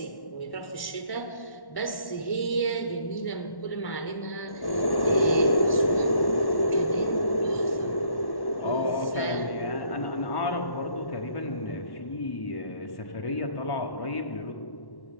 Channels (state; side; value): late; right; 1.1 ms